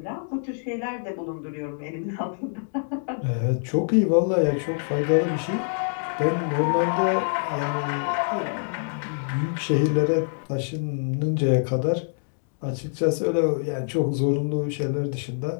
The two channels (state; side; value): silent; right; digital silence